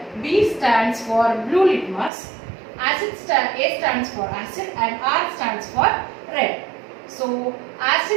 B stands for blue litmus, A stands for acid and R stands for red. So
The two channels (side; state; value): left; drops out; at 2.1 s